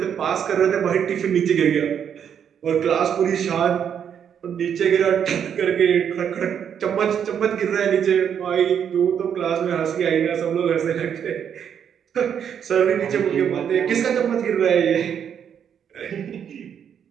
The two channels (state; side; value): quieter; left; 8.3 dB